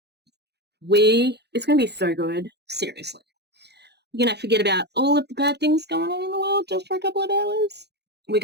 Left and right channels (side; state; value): left; late; 0.48 ms